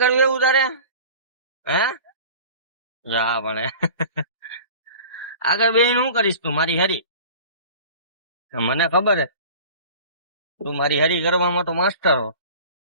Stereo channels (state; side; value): inverted; both; correlation -0.41